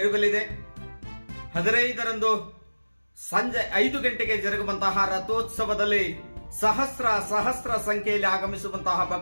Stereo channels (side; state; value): both; inverted; correlation -1.00